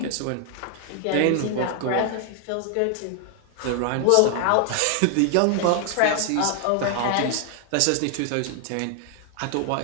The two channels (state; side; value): different; both; correlation 0.00